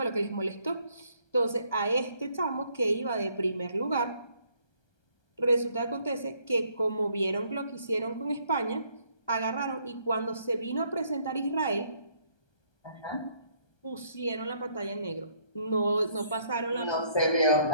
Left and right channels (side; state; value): right; late; 1.3 ms